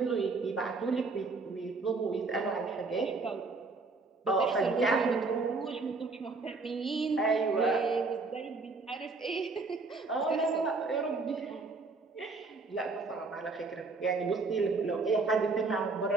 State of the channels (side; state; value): left; quieter; 3.9 dB